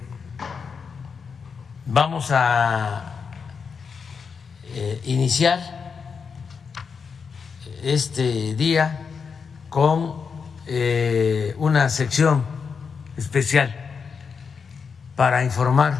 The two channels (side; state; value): right; quieter; 5.8 dB